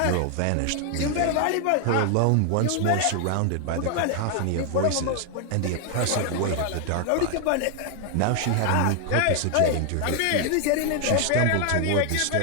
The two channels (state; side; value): different; both; correlation 0.00